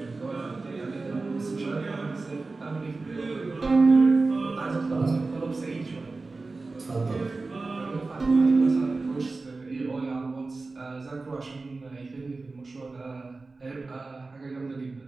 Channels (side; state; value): left; quieter; 3.6 dB